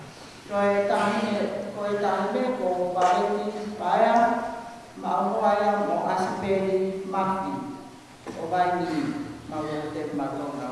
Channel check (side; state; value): both; identical; correlation 1.00